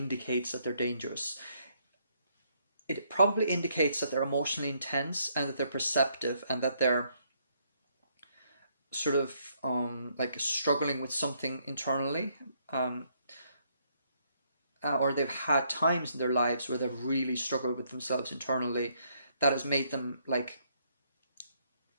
that they're dangerous. It probably indicates that they're emotionally intense and that they're perceptive and that they're sort of like struggling with something internally, um, or they've had times in their lives where they've really struggled with themselves internally that has made them like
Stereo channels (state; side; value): inverted; both; correlation -0.71